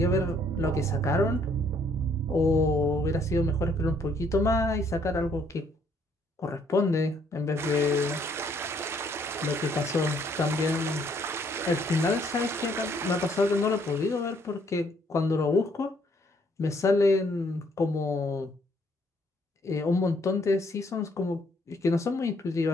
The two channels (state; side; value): normal; both; correlation 0.67